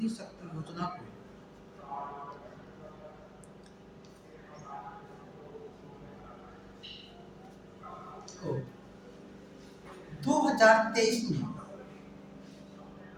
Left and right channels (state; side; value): identical; both; correlation 1.00